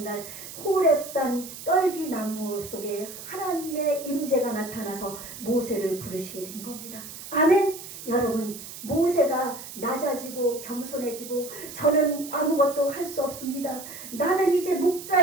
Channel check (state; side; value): noise; right; hiss, 12 dB below the sound